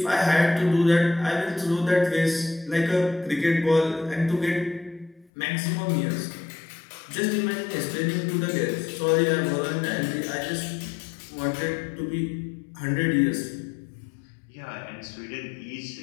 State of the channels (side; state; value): right; drops out; at 5.3 s